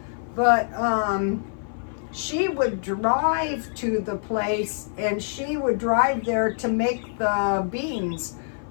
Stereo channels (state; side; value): silent; right; 56 dB below the other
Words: but she would drive to the place, and she would drive there to make the beans.